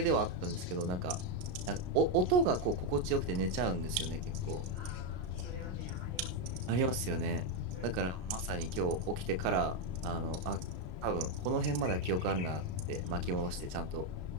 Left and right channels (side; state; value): left; late; 33 ms